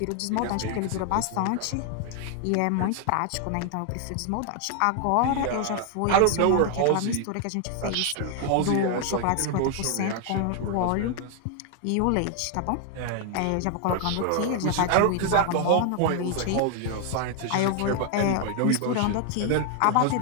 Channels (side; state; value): both; different; correlation 0.00